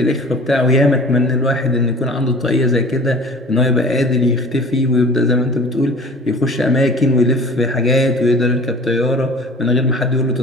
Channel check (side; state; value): both; normal; correlation 0.44